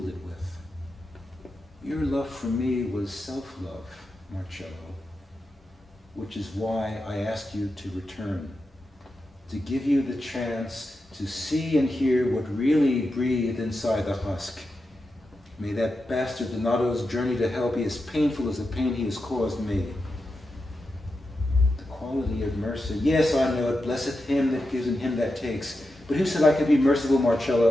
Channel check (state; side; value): normal; both; correlation 0.89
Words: it with. Your love for me was self-love, Marcello, which is why I asked you to return, to give you the chance to see and hear what really breathed inside the husk. May that bastard Donato's journey to hell be as painful as the pain he has caused me. The quality of mercy, yes, I know it, blesseth him that gives and him that takes. But who said I could be merciful,